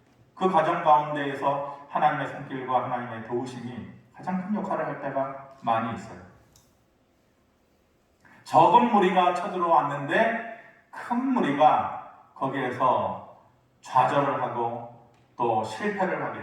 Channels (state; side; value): identical; both; correlation 1.00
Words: 그 과정 가운데에서 하나님의 손길과 하나님의 도우심이 가장 큰 역할을 할 때가 많이 있어요. 적은 무리가 쳐들어왔는데 큰 무리가 거기에서 좌절을 하고 또 실패를 하게